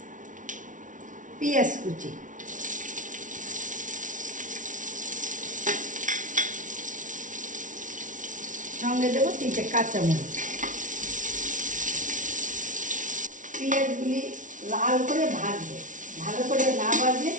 পেঁয়াজ কুচি, সঙ্গে দেব 3টে কাঁচামরিচ। পেঁয়াজগুলি লাল করে ভাজবে, ভালো করে না ভাজলে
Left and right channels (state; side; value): late; left; 0.37 ms